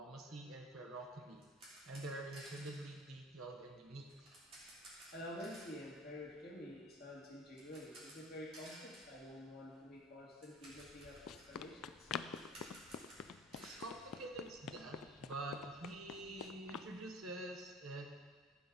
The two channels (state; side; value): normal; both; correlation 0.44